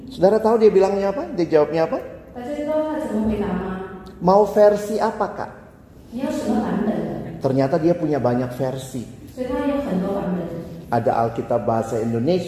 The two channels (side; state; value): both; identical; correlation 1.00